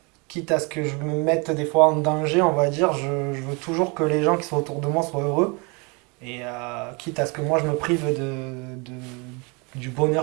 quitte à ce que je me mette des fois en danger, on va dire, je veux toujours que les gens qui sont autour de moi soient heureux et quitte à ce que moi je me prive du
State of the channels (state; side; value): quieter; left; 30.5 dB